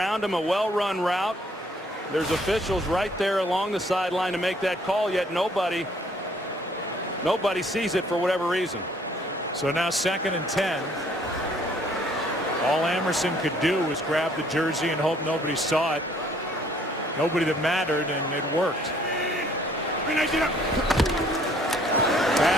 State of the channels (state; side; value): normal; both; correlation 0.62